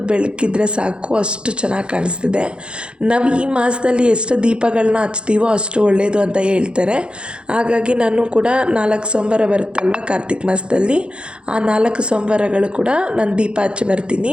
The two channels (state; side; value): late; left; 0.054 ms